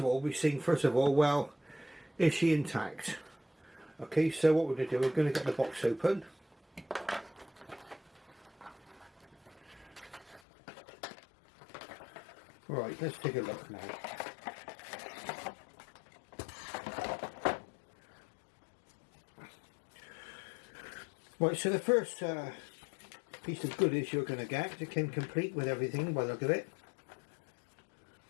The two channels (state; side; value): drops out; right; at 10.4 s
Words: all, well, is she intact? Okay, so what we're going to do, we're going to get the box open. Right, let's take a look now. Right, so the first piece of goodies you're going to get, it came complete with everything by the look of it.